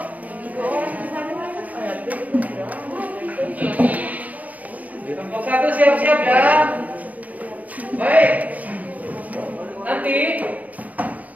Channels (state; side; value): late; left; 0.073 ms